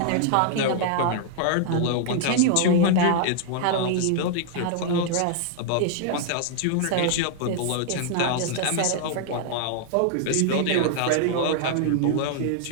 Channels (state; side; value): different; both; correlation -0.01